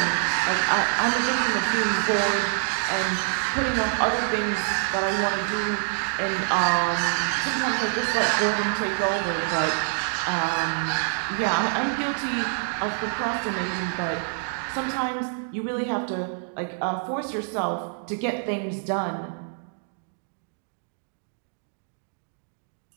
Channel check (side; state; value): left; silent; digital silence